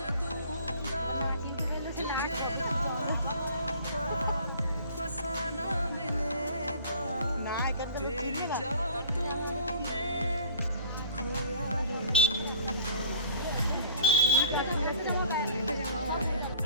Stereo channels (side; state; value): both; inverted; correlation -0.48